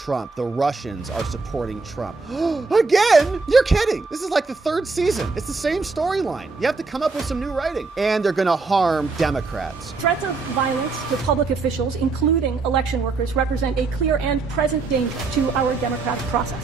The Russians are supporting Trump. Again? You're kidding. This is like the third season. It's the same storyline. You have to come up with some new writing. And they're going to harm Democrats. Threats of violence to public officials, including election workers, represent a clear and present danger to our democratic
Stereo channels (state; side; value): quieter; left; 4.1 dB